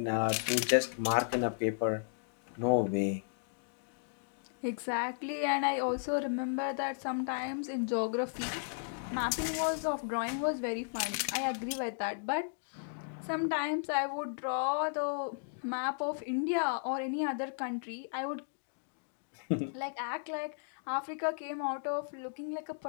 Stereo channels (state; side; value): silent; right; digital silence